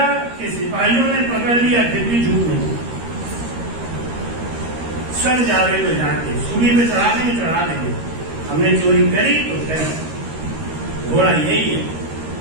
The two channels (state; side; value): late; left; 13 ms